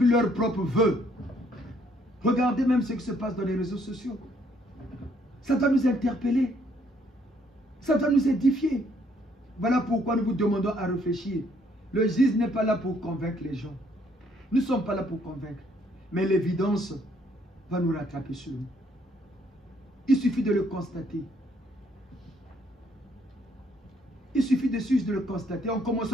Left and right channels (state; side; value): normal; both; correlation 0.67